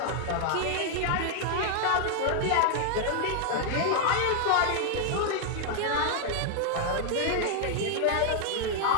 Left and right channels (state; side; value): different; both; correlation 0.00